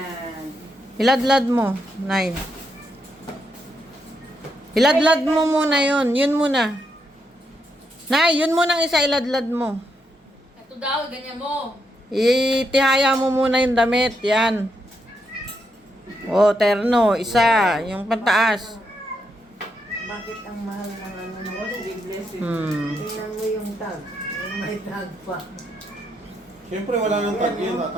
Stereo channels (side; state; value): both; normal; correlation 0.80